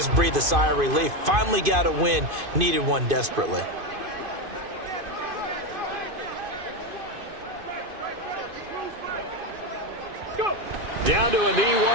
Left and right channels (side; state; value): left; late; 2.5 ms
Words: breathe a sigh of relief. Finally got a win. Needed one desperately. Down to a knee